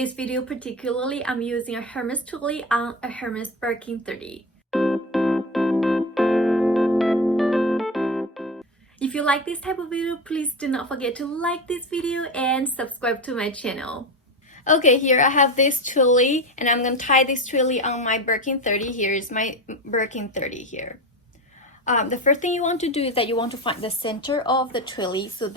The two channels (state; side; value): normal; both; correlation 0.22